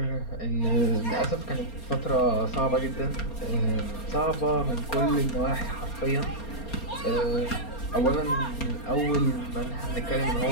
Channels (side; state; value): right; late; 4.3 ms